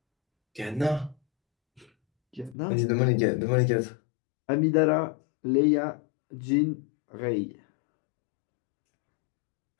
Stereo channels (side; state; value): right; drops out; at 2.6 s